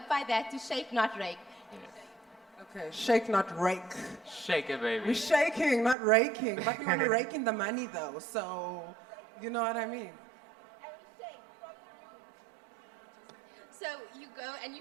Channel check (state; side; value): drops out; left; at 6.0 s